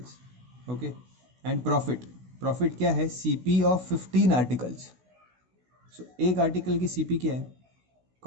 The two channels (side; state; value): left; late; 16 ms